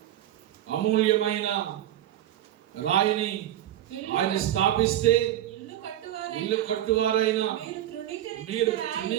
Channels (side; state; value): left; quieter; 12.6 dB